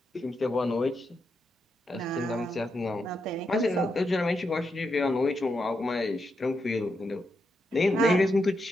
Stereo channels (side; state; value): both; normal; correlation 0.83